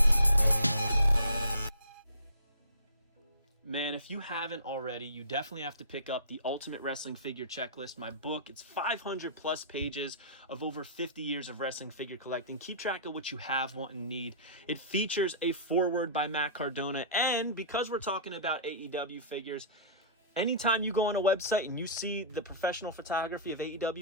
Man, if you haven't already, you definitely have to pick up the Ultimate Wrestling Figure Checklist, my book. It's 500 plus pages of over 50 years of wrestling figure collecting. Keep track of what you have, want, and need. It features a foreword by Matt Cardona, and because we're talking about AEW figures, anytime you go on a website and you see the professional photography of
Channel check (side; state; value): both; inverted; correlation -0.39